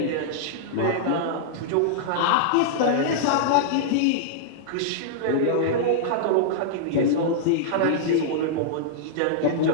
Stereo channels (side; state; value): both; different; correlation -0.02